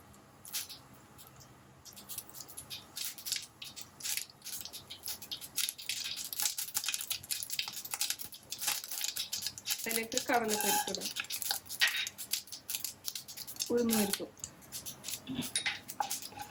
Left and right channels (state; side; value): identical; both; correlation 1.00